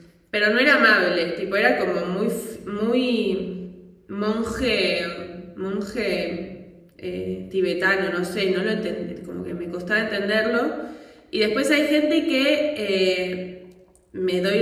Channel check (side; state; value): both; identical; correlation 1.00